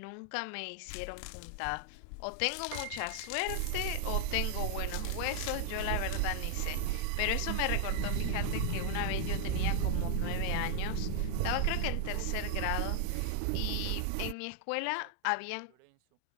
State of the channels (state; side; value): different; both; correlation 0.00